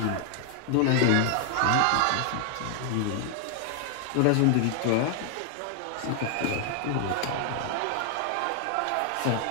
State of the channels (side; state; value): both; different; correlation 0.00